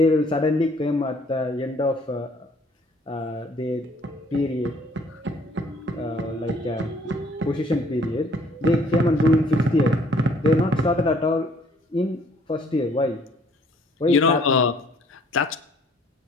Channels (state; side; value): normal; both; correlation 0.60